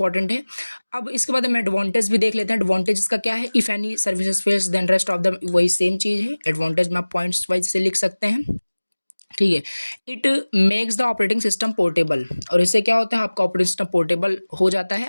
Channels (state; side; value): inverted; both; correlation -1.00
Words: है। अब इसके बाद हम एडवांटेज भी देख लेते हैं। एडवांटेज इसका क्या है, if any services fails then rest of the, वही सेम चीज़ है। एडवांटेज में आप पॉइंट्स वाइज से लिख सकते हैं। ठीक है। It makes the operating system portable, और इससे क्या होता है, आपका ऑपरेटिंग सिस्टम पोर्टेबल हो जाता